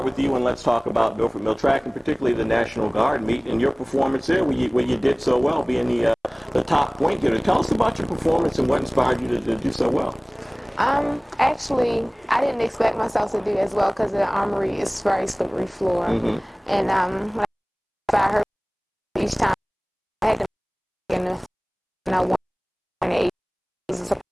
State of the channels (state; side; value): identical; both; correlation 1.00